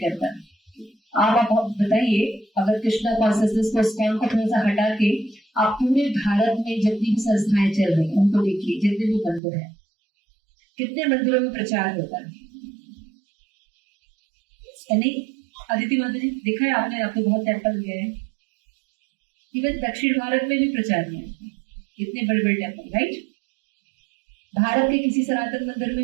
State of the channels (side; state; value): left; drops out; at 9.4 s